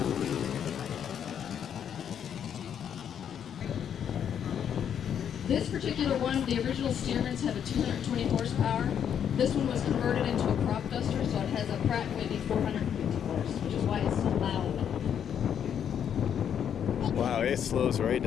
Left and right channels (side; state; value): right; quieter; 8.7 dB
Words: This particular one, the original Stearmans have a 220 horsepower. This one was converted into a crop duster, so it has a Pratt & Whitney 450 horse, which is why it's so loud. Wow, it slows right